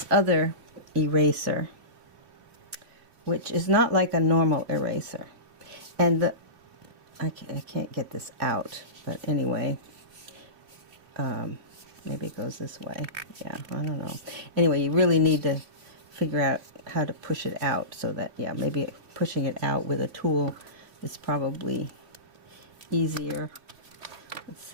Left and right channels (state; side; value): late; left; 2.9 ms